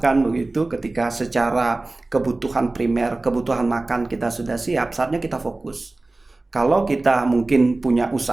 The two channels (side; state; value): left; quieter; 3.1 dB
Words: begitu. Ketika secara kebutuhan primer, kebutuhan makan kita sudah siap, saatnya kita fokus. Kalau kita mungkin punya